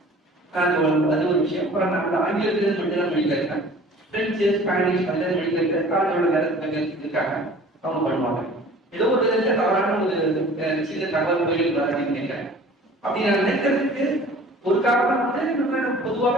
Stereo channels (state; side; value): normal; both; correlation 0.46